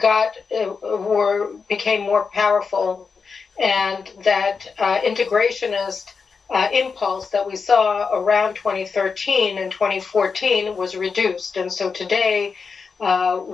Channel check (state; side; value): quieter; right; 5.3 dB